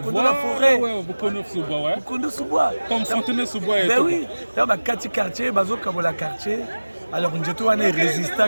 la forêt. Mukondo Soubois. Comme Fontenay Soubois. Ben oui, dans ma quartier, bazo kabola quartier. Alors nous étions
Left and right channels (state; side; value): inverted; both; correlation -1.00